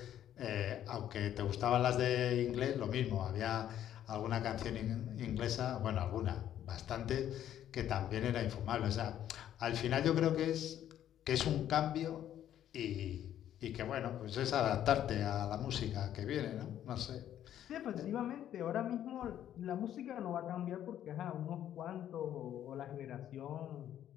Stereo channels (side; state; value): right; quieter; 11.0 dB